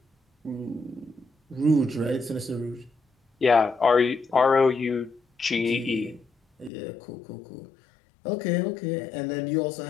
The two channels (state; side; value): drops out; right; at 6.7 s